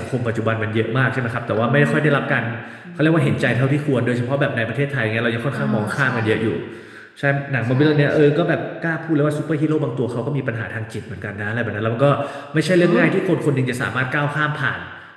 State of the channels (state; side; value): identical; both; correlation 1.00